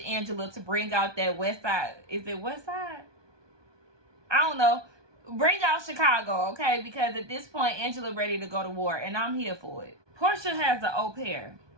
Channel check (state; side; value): late; left; 1.2 ms